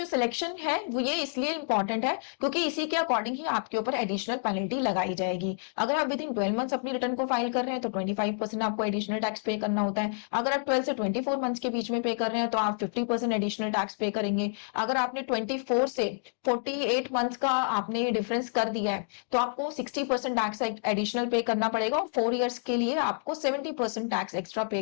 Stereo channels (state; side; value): silent; right; digital silence